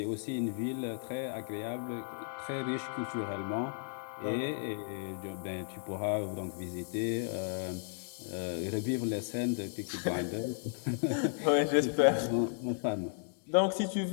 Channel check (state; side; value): silent; right; digital silence